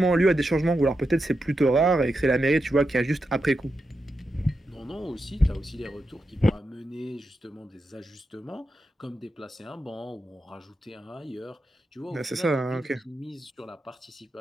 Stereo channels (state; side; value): normal; both; correlation 0.87